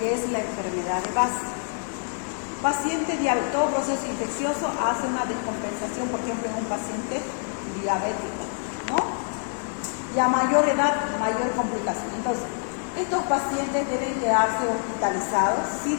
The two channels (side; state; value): right; silent; 61 dB below the other